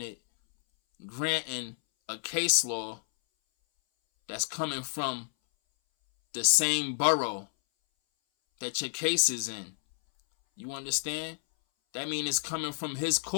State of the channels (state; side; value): silent; right; 58 dB below the other